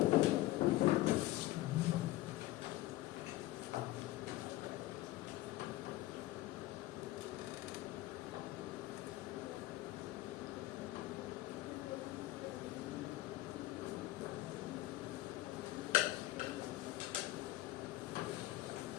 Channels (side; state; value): right; quieter; 16.8 dB